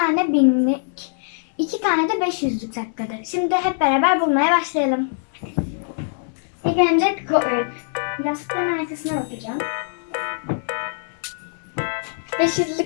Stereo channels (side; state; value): right; silent; 59 dB below the other